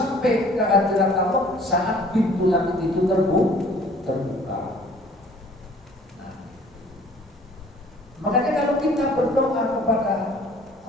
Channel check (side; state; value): both; normal; correlation 0.54